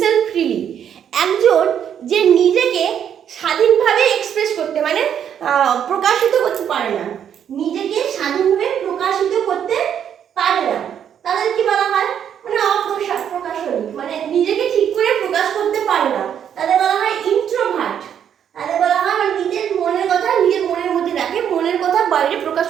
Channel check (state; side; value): quieter; left; 8.9 dB